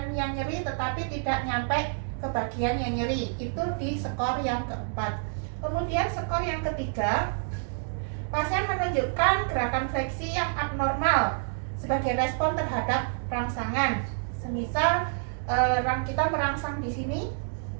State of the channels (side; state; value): left; silent; digital silence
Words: yang nyeri tetapi tidak nyampe ke bagian yang nyeri. Itu di skor yang keempat. Kemudian skor yang ketiga, pasien menunjukkan gerakan fleksi yang abnormal sebagai respon terhadap rangsangan. Semisal kita merangsang di sini,